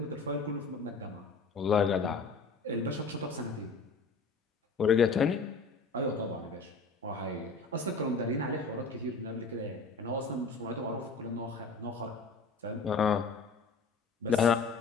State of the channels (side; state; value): right; quieter; 4.3 dB